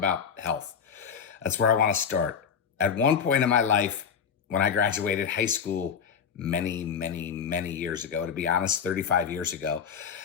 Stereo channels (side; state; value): right; quieter; 7.0 dB